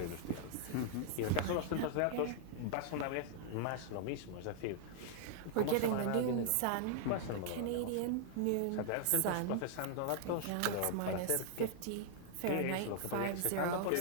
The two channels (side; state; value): both; different; correlation 0.00